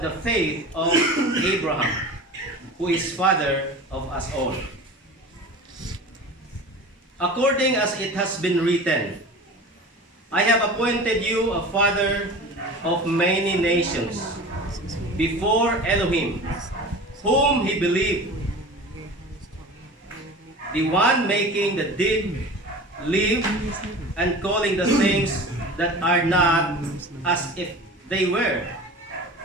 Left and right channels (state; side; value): normal; both; correlation 0.36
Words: the faith of Abraham, who is father of us all. According as it has been written, I have appointed you a father of many nations before Elohim, whom he believed, the one making the dead live and calling the things that are not as if they were.